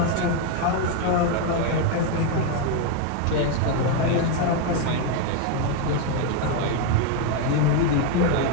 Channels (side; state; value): both; different; correlation 0.01